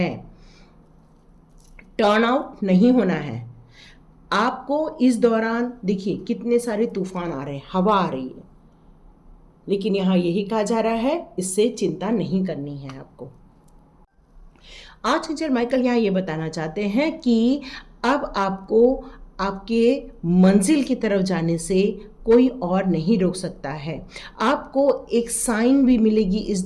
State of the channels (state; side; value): identical; both; correlation 1.00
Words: टर्न आउट नहीं होना है आपको। इस दौरान देखिए कितने सारे तूफान आ रहे हैं, हवा आ रही है, लेकिन यहाँ यही कहा जा रहा है इससे चिंता नहीं करनी है आपको। आर्चएंजल माइकल यहाँ ये बताना चाहते हैं कि अब आपको आपके मंजिल की तरफ जाने से कोई और नहीं रोक सकता है। आपको एक साइन भी मिलेगी इस